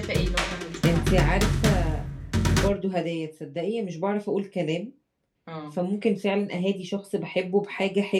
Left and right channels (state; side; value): identical; both; correlation 1.00